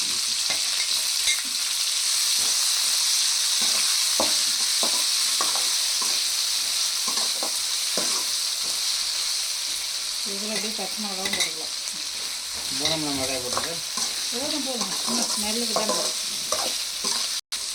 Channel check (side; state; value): both; identical; correlation 1.00